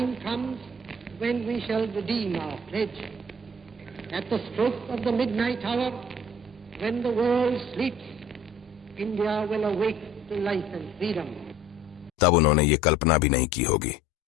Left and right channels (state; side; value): normal; both; correlation 0.50